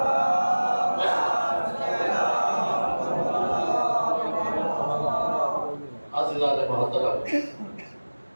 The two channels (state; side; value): inverted; both; correlation -1.00